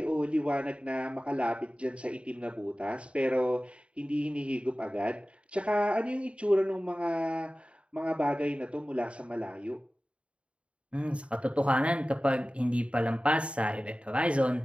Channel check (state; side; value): late; left; 0.060 ms